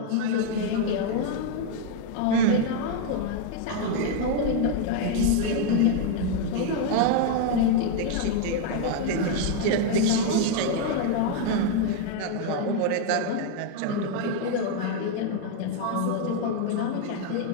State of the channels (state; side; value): different; both; correlation 0.00